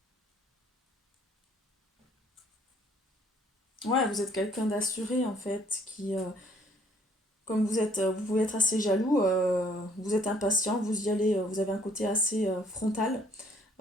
Ouais, vous êtes quelqu'un d'assuré en fait, comme vous pouvez être assez jaloux, vous êtes impatient, vous y allez, vous avez un côté assez frontal,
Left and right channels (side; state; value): both; normal; correlation 0.61